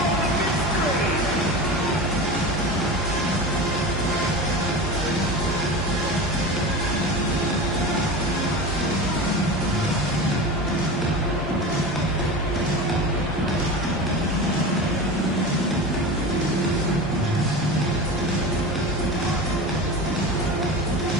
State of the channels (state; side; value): normal; both; correlation 0.28